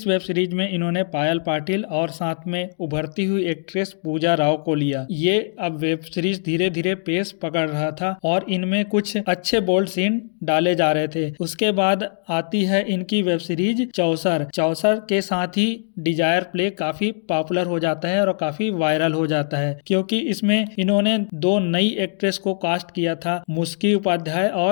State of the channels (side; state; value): right; silent; digital silence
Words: वेब सीरीज में इन्होंने पायल पाटिल और साथ में उभरती हुई एक्ट्रेस पूजा राव को लिया। ये अब वेब सीरीज धीरे धीरे पेस पकड़ रहा था और इनमें कुछ अच्छे बोल्ड सीन डाले जा रहे थे। उसके बाद आती है इनकी वेब सीरीज चौसर। चौसर के साथ ही डिजायर प्ले काफी पॉपुलर हो जाता है और काफी वायरल हो जाता है, क्योंकि इसमें इन्होंने 2 नई एक्ट्रेस को कास्ट किया था, मुस्की उपाध्याय